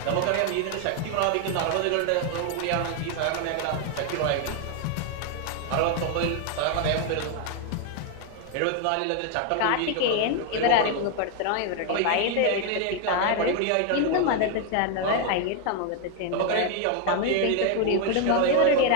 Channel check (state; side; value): different; both; correlation 0.01